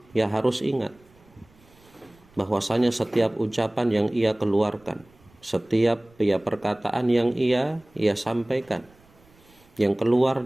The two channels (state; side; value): noise; right; rumble, 29 dB below the sound